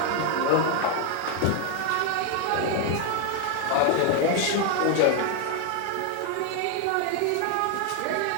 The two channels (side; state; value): both; different; correlation 0.00